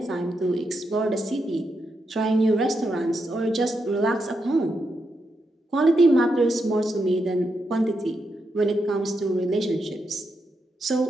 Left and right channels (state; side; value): normal; both; correlation 0.83